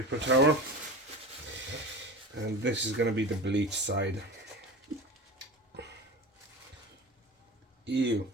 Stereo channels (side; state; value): both; normal; correlation 0.32